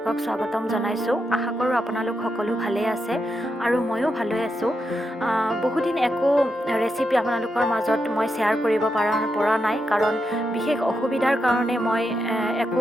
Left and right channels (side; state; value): both; normal; correlation 0.84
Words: স্বাগতম জনাইছোঁ। আশা কৰোঁ আপোনালোক সকলো ভালেই আছে আৰু ময়ো ভালেই আছোঁ। বহুদিন একো ৰেচিপি আপোনালোকৰ মাজত মই শ্বেয়াৰ কৰিব পৰা নাই, কাৰণ বিশেষ অসুবিধাৰ কাৰণে মই একো